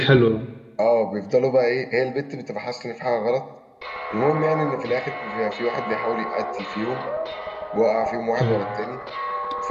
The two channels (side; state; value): both; identical; correlation 1.00